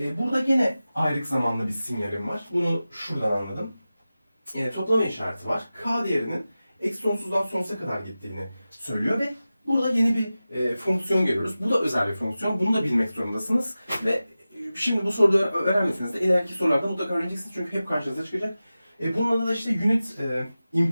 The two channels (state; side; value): inverted; both; correlation -0.95